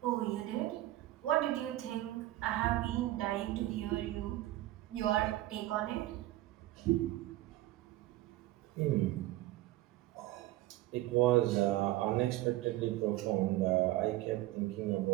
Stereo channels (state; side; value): quieter; left; 16.4 dB